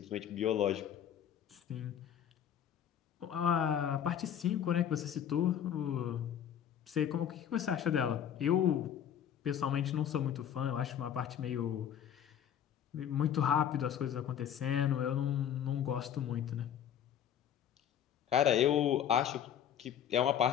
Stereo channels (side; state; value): right; quieter; 9.4 dB